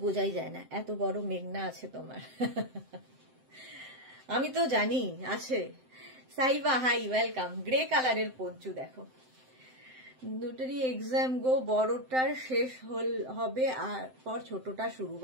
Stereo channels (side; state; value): left; late; 7.8 ms